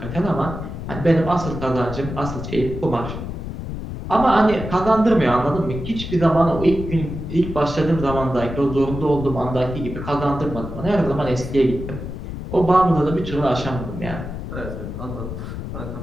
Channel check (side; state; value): left; noise; rumble, 7 dB below the sound